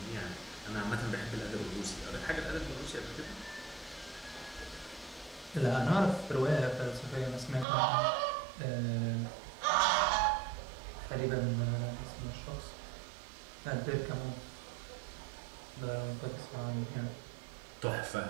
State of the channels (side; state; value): left; drops out; at 7.7 s